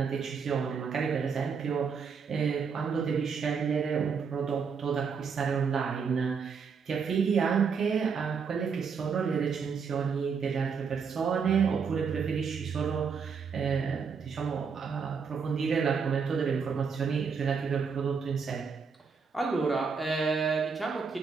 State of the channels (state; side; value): quieter; left; 5.9 dB